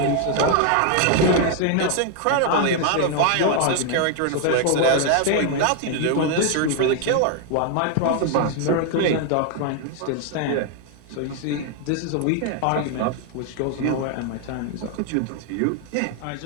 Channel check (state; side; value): different; both; correlation 0.00